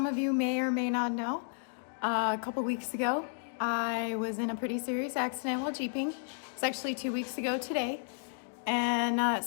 of you may or may not know, a couple weeks ago, I was in a pretty serious accident while Jeeping. It's actually 2 weeks ago today. And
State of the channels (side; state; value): right; silent; digital silence